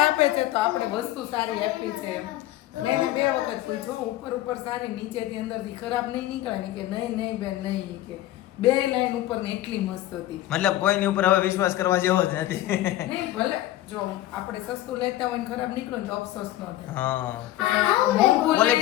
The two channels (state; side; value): quieter; right; 15.0 dB